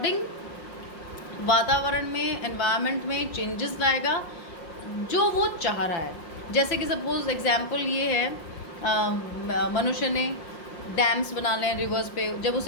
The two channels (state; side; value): late; right; 5.6 ms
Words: वातावरण में, एनवायरनमेंट में चेंजेस लाएगा जो वो चाह रहा है। जैसे कि सपोज एग्जांपल ये है, मनुष्य ने डैम्स बना लें रिवर्स पे, जब